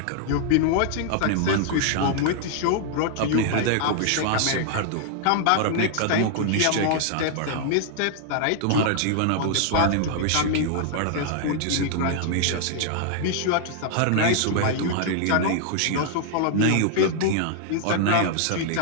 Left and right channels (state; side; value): different; both; correlation 0.00